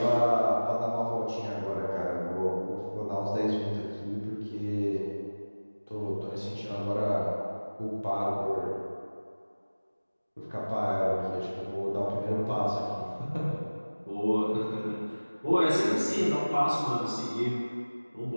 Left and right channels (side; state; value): both; inverted; correlation -1.00